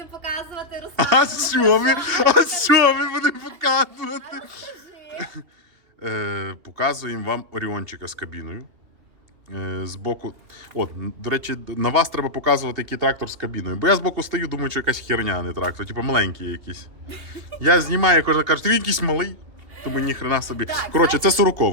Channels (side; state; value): left; late; 2.9 ms